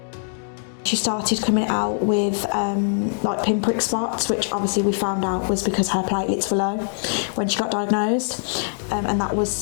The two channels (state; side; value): silent; right; digital silence